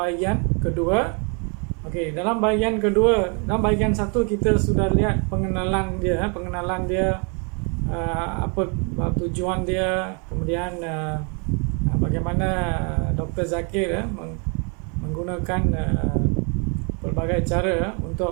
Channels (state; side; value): quieter; left; 36.5 dB